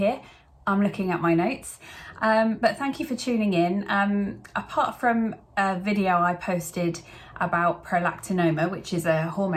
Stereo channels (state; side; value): identical; both; correlation 1.00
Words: I'm looking at my notes. But thank you for tuning in. Apart from a video I posted about prolactinoma, which is a